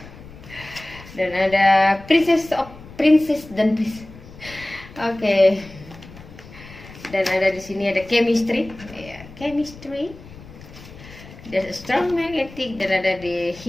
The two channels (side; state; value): left; noise; rumble, 18 dB below the sound